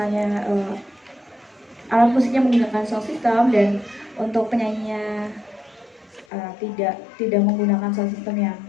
alat musiknya menggunakan sound system dan untuk penyanyinya tidak menggunakan sound system yang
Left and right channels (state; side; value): drops out; right; at 6.2 s